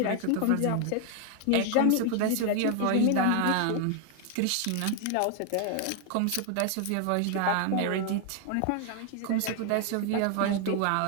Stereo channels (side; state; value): both; different; correlation 0.00